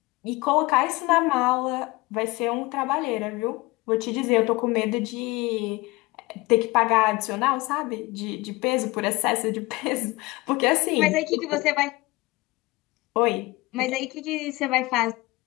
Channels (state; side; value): quieter; right; 22.2 dB